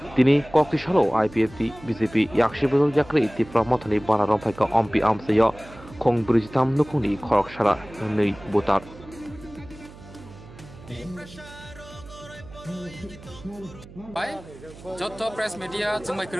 tini kokti salo IPFT BJP yakshi bodol yakri Tripura mothoni bana romphai ompi amsayo khong brijitam nukuni khorok sara nei botar Bai, joto press media jengbai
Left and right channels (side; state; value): right; noise; hum, 19 dB below the sound